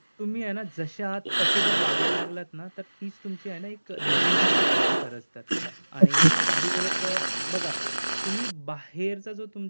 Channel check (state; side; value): inverted; both; correlation -1.00